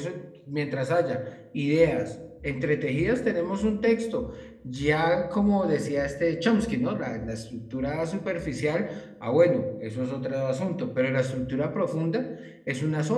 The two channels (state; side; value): identical; both; correlation 1.00